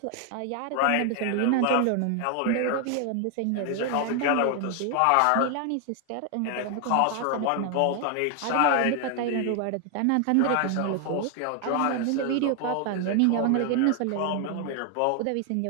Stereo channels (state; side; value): different; both; correlation 0.00